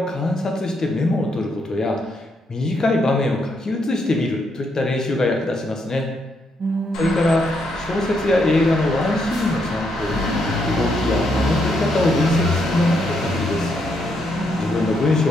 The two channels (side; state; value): both; normal; correlation 0.77